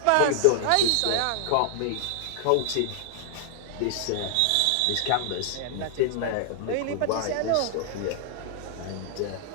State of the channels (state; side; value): different; both; correlation -0.01